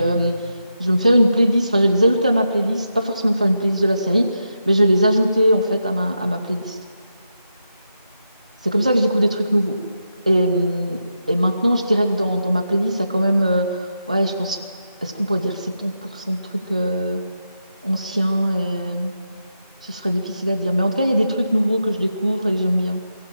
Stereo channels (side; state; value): both; inverted; correlation -0.86